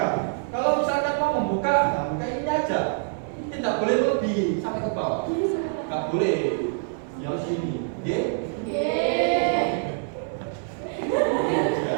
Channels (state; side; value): silent; left; digital silence